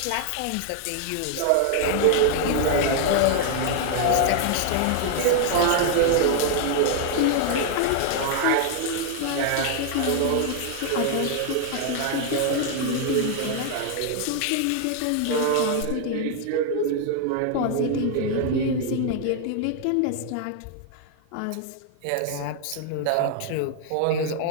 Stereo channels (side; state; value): both; different; correlation 0.00